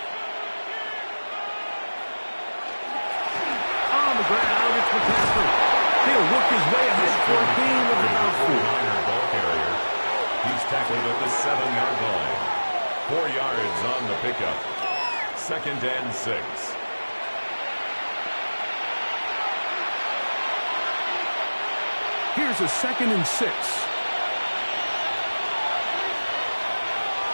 On the ground, it's McCaffrey. He'll work his way ahead for a gain of about 4. Ball carrier. He's tackled at the 7-yard line. 4 yards on the pickup. Second and 6. Here's a second and 6.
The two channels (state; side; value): inverted; both; correlation -1.00